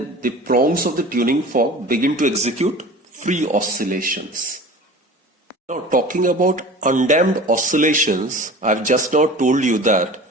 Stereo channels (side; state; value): both; normal; correlation 0.39